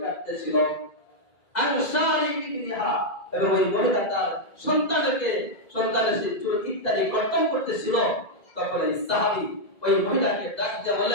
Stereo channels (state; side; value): late; right; 2.0 ms